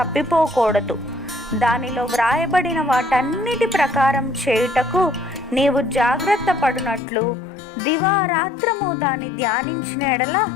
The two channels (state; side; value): drops out; right; at 7.0 s